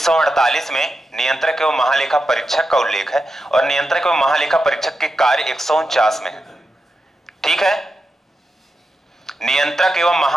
में नियंत्रक एवं महालेखा परीक्षक का उल्लेख है, और नियंत्रक एवं महालेखा परीक्षक के कार्य 149 में है, ठीक है? नियंत्रक एवं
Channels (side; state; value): both; normal; correlation 0.88